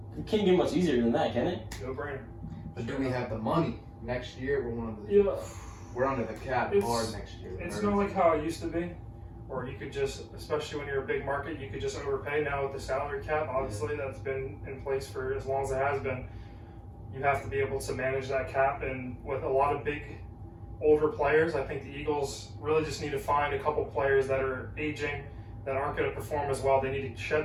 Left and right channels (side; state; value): both; identical; correlation 1.00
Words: it can't get much easier than that, can it? No brainer. But do we have the money? Next year, we're under the cap hard next year. It's not like how it used to be, or you could just, especially when you're a big market, you could just overpay. Now with the salary cap, obviously that's been in place for as long as it has been. You have to be able to manage that cap, and with a lot of big, older players, I think the Eagles really just need to find a couple players that are aging, that aren't going to perform as well. They need to shed